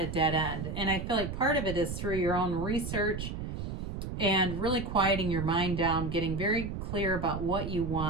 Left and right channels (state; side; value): noise; right; rumble, 6 dB below the sound